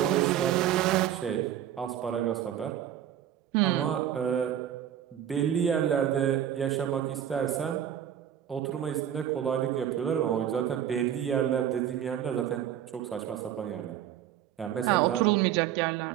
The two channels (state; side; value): quieter; left; 10.4 dB